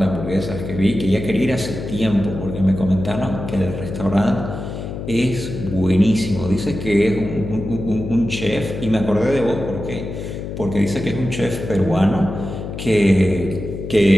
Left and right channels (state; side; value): noise; left; hum, 7 dB below the sound